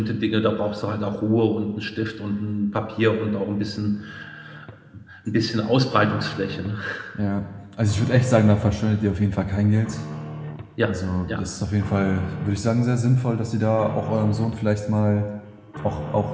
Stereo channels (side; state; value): both; identical; correlation 1.00